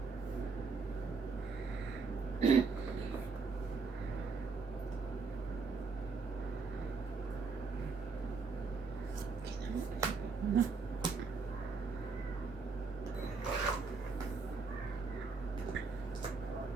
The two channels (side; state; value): left; quieter; 4.5 dB